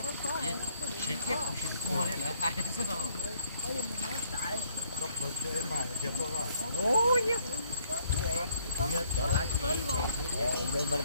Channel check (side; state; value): both; inverted; correlation -0.67